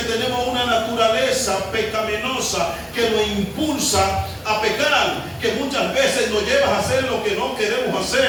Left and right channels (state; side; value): identical; both; correlation 1.00